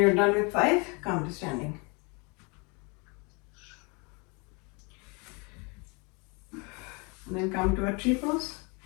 done with 5, come to standing. And then come to a tree pose.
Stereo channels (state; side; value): quieter; right; 30.9 dB